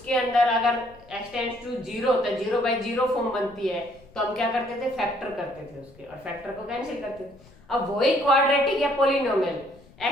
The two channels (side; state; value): left; noise; rumble, 25 dB below the sound